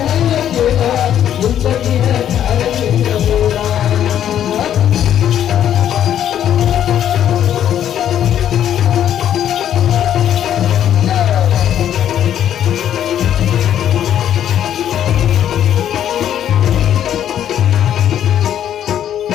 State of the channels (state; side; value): quieter; right; 10.4 dB